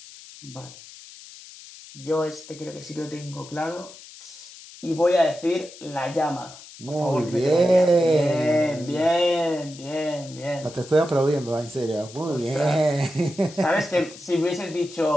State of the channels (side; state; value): left; noise; hiss, 18 dB below the sound